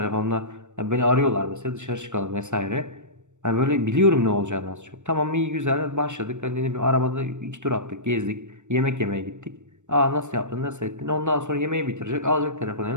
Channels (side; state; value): left; late; 0.84 ms